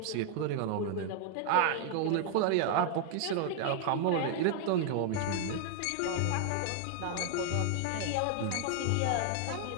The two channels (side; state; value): both; different; correlation 0.00